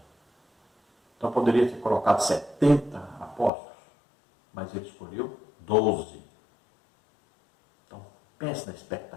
Então poderia ter colocado 70 apóstolos, mas ele escolheu 12. Então pense na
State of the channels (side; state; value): right; drops out; at 3.5 s